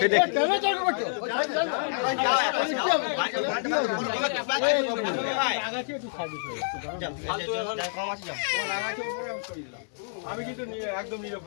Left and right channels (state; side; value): silent; right; digital silence